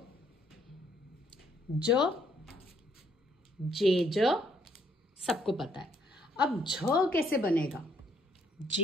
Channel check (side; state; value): both; normal; correlation 0.69